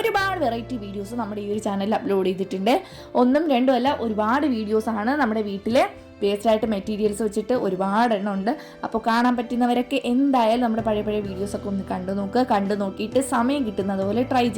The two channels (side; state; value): both; identical; correlation 1.00